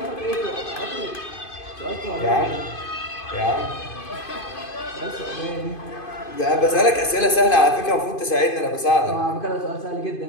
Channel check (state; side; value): late; right; 2.5 ms